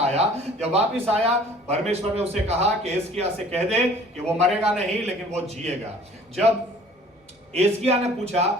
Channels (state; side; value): normal; both; correlation 0.51